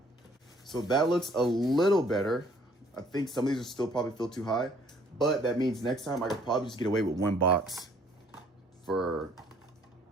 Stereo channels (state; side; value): normal; both; correlation 0.60